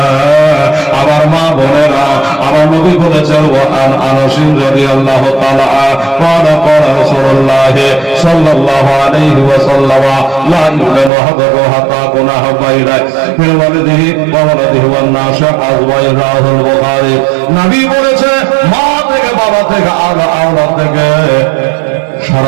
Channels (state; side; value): drops out; left; at 11.1 s